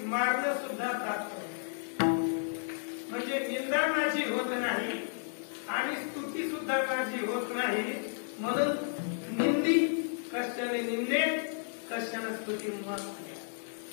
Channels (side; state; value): right; silent; 56 dB below the other